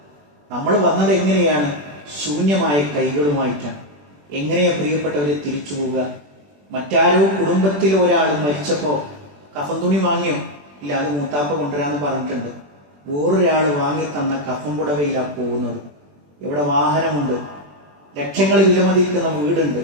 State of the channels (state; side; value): late; left; 21 ms